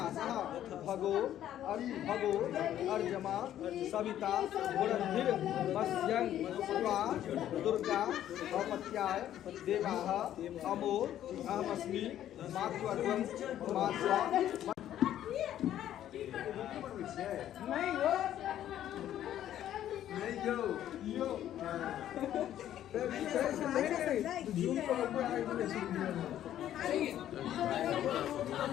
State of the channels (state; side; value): quieter; right; 11.6 dB